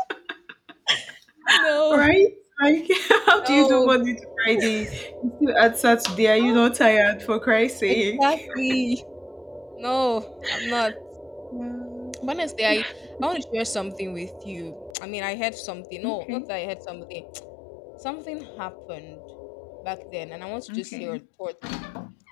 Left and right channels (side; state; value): right; drops out; at 14.9 s